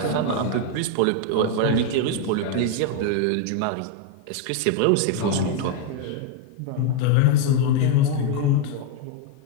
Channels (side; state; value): both; different; correlation 0.01